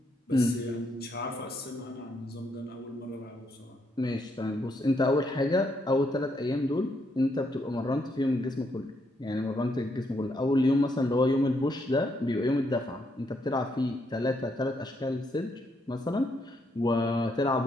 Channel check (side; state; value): both; normal; correlation 0.76